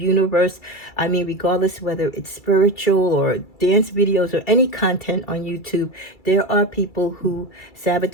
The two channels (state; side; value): late; right; 2.3 ms